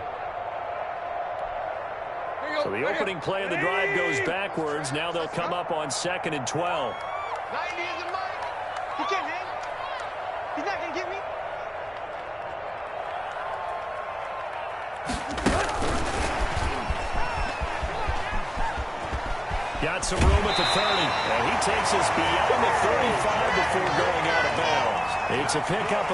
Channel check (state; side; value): identical; both; correlation 1.00